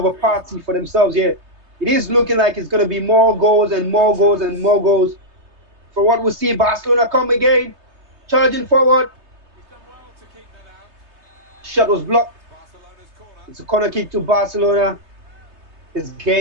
a party for themselves here. It is looking like it's going to be more goals and more goals and more goals. For what we see, Barcelona come again, charging forward. Shot was blocked. It's a corner kick to Barcelona. This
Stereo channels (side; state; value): left; late; 3.3 ms